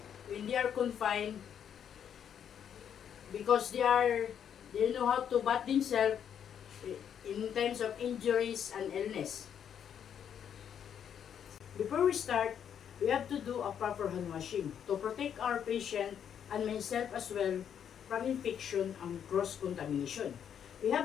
when they are confined because they know how to bath themselves in times of injuries and illness. Before we start, we have to do a proper hand washing to protect our patient and myself as well from infection and cross-contamination. We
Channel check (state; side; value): quieter; right; 8.6 dB